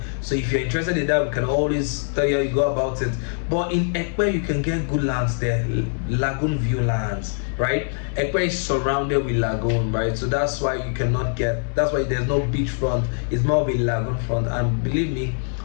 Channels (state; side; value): silent; right; 63 dB below the other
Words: So if you're interested in that, we can always tell you how you go about it. But in Epe, you can get good lands there, lagoon view lands, right? Epe is surrounded with lagoon, right? So that's why you cannot get, that's why there's no beachfront. It's more of a lagoon front, and believe me,